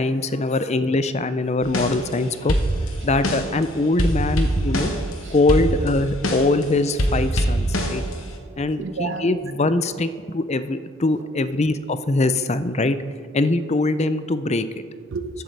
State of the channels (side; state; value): both; normal; correlation 0.61